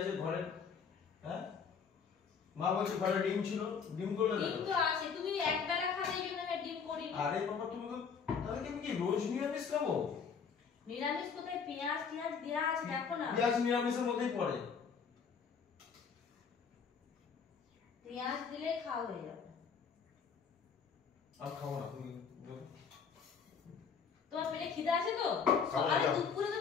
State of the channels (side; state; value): right; quieter; 6.2 dB